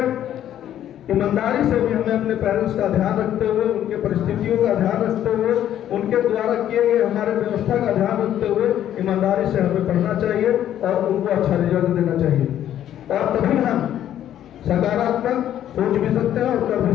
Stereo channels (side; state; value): right; quieter; 11.2 dB